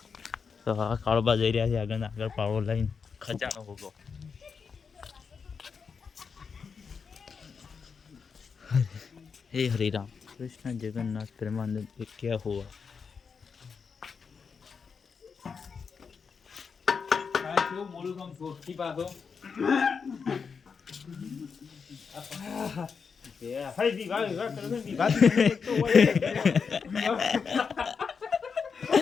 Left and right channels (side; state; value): right; quieter; 5.8 dB